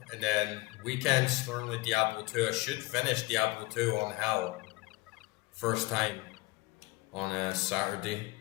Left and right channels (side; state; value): right; quieter; 21.7 dB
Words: And then weekends normally Diablo 2. I should finish Diablo 2 on Hell. First time on a Saturday.